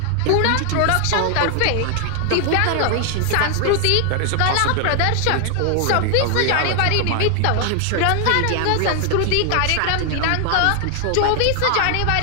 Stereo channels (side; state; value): both; different; correlation 0.00